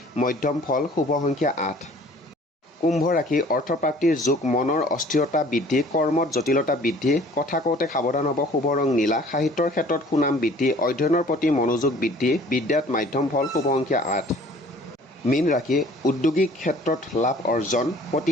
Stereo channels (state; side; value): normal; both; correlation 0.52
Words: মধ্যম ফল, শুভ সংখ্যা 8। কুম্ভ ৰাশি অৰ্থপ্ৰাপ্তিৰ যোগ, মনৰ অস্থিৰতা বৃদ্ধি, কৰ্মত জটিলতা বৃদ্ধি, কথা কওঁতে সাৱধান হ'ব, শুভ ৰং নীলা, সাহিত্যৰ ক্ষেত্ৰত সুনাম বৃদ্ধি, অধ্যয়নৰ প্ৰতি মনোযোগ বৃদ্ধি, বিদ্যাত মাধ্যম ফল, শুভ সংখ্যা 8। মীন ৰাশি উদ্যোগিক ক্ষেত্ৰত লাভ অৰ্জন,